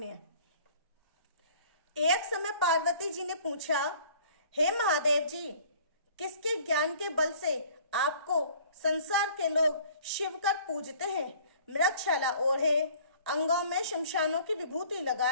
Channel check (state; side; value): inverted; both; correlation -0.52